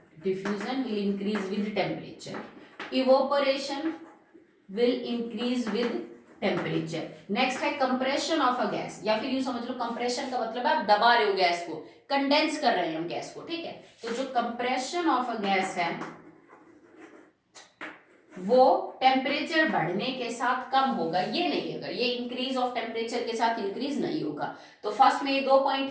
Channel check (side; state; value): both; identical; correlation 1.00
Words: diffusion will increase with temperature, evaporation will increase with temperature. Next है कंप्रेशन ऑफ अ गैस, या फिर यूं समझ लो कंप्रेशन का मतलब है आप दबा रहे हो गैस को, कंडेंस कर रहे हैं हम गैस को। ठीक है, तो जो कंप्रेशन ऑफ अ गैस है वो टेम्परेचर बढ़ने के साथ कम होगा, ये नहीं होगा, ये इंक्रीज ऑफ टेम्परेचर के साथ इंक्रीज नहीं होगा। तो फर्स्ट में ये 2